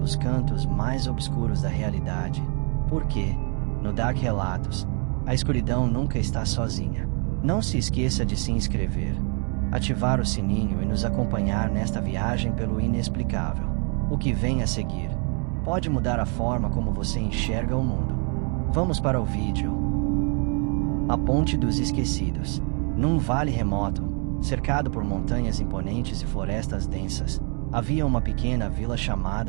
cantos mais obscuros da realidade, porque, no Dark Relatos, a escuridão nunca está sozinha. Não se esqueça de se inscrever, ativar o sininho e nos acompanhar nesta viagem pelo inexplicável. O que vem a seguir pode mudar a forma como você enxerga o mundo. Vamos para o vídeo. A Ponte dos Esquecidos. Num vale remoto, cercado por montanhas imponentes e florestas densas, havia uma pequena vila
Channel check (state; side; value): quieter; left; 38.2 dB